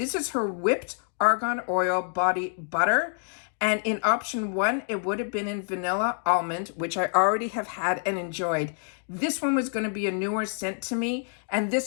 is her whipped argan oil body butter. And in option 1, it would have been in vanilla almond, which I already have had and enjoyed. This one was going to be a newer scent to me, and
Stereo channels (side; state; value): right; silent; 56 dB below the other